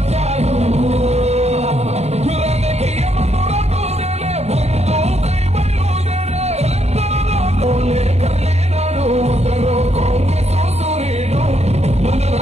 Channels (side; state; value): left; late; 0.31 ms